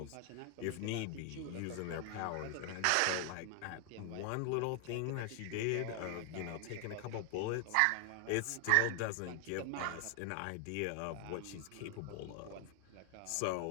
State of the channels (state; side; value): different; both; correlation 0.00